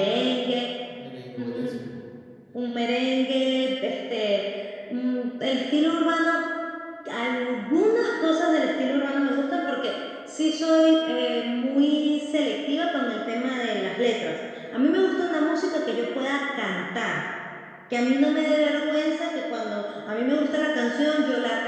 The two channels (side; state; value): both; identical; correlation 1.00